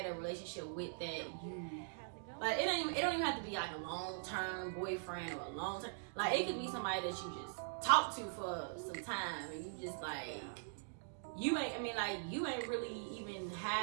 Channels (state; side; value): silent; left; digital silence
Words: a relationship with that you. Like it don't even have to be like a long-term boyfriend or a long-term, like it could be somebody that you just talk to for some time and you just like you ain't really even